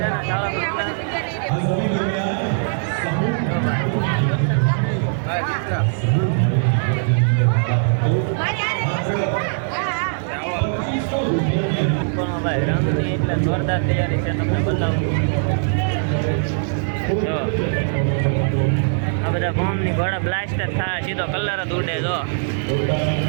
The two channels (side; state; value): left; silent; digital silence